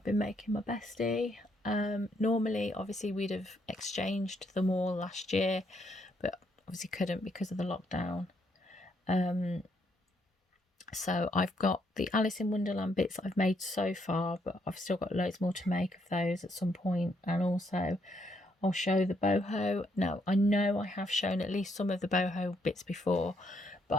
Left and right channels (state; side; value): normal; both; correlation 0.74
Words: been making my bestie. Normally, obviously, we'd have exchanged them all last year, but obviously couldn't because of the lockdown. So I've got the Alice in Wonderland bits that I've made so far, but I've still got loads more to make of those at some point, and also I'll show the boho. Now, I know I have shown at least some of the boho bits before,